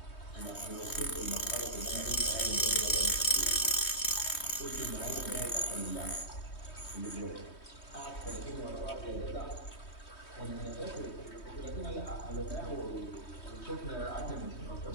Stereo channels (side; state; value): right; late; 3.2 ms